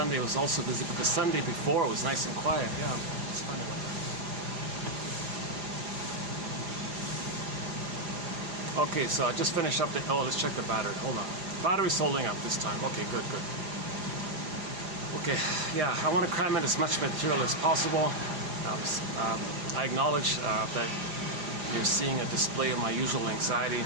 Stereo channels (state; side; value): late; left; 4.9 ms